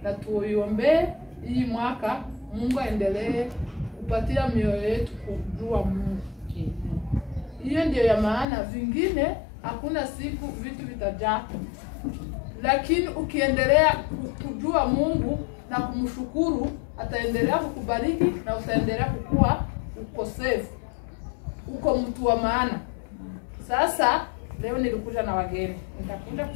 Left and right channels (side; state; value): right; drops out; at 8.5 s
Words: na tuombee hii mwaka Mungu aendelee kupatia mioyo yetu kujua Mungu. Hiyo ndio ya maana, vingine hakuna siku vitu vitajaa. Lakini ukiendelea kujua Mungu na kumshukuru, ataendelea kukubariki na utaendelea kukua uko safe. Uko mtu wa maana. Sasa leo nilikuja na wageni. Nitakuja